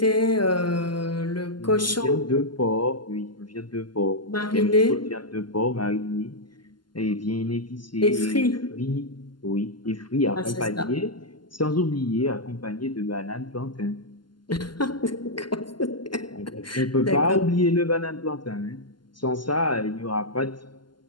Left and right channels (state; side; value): late; right; 0.71 ms